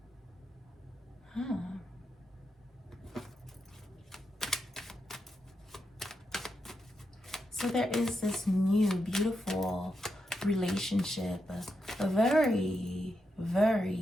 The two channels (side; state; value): both; normal; correlation 0.85